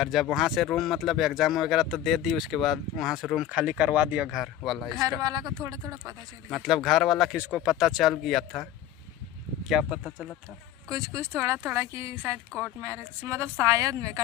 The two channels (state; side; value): quieter; right; 11.6 dB